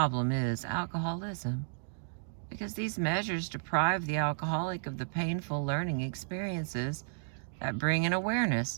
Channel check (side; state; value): left; silent; digital silence